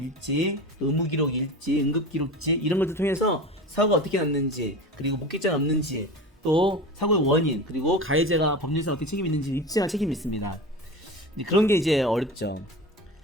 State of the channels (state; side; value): normal; both; correlation 0.31